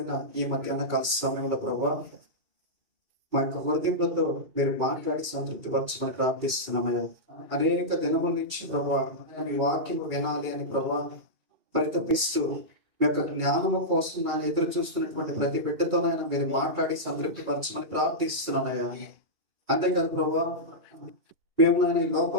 ఈ మధ్యాహ్న కాల సమయంలో ప్రభా, మా యొక్క హృదయంలో మీరు మాట్లాడి సంతృప్తి పరచమని ప్రార్థిస్తున్నామయ్యా. అనేక దినముల నుంచి ప్రభా మీ వాక్యం వినాలి అని ప్రభా పరితపిస్తూ మీ యొక్క జ్ఞానము కోసం నాన్న ఎదురు చూస్తున్నటువంటి ప్రతి బిడ్డతోనైనా మీరు మాట్లాడి సంతృప్తి పరచమని ప్రార్థిస్తున్నానయ్యా. అంతేకాదు ప్రభా, మేము నాయన ఈ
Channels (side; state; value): left; late; 2.3 ms